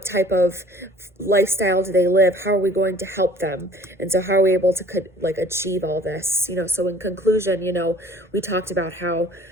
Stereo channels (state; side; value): normal; both; correlation 0.52